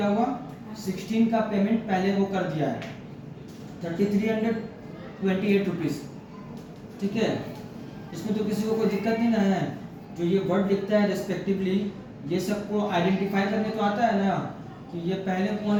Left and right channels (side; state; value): both; identical; correlation 1.00